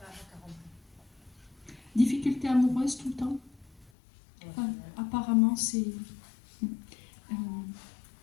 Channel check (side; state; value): right; drops out; at 3.9 s